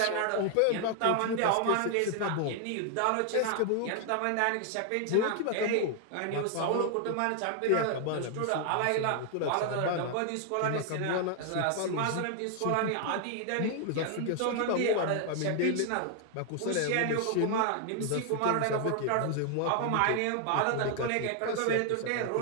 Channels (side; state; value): both; different; correlation 0.00